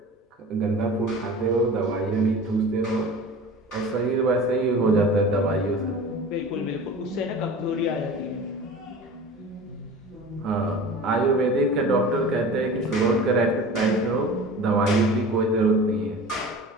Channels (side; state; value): both; normal; correlation 0.38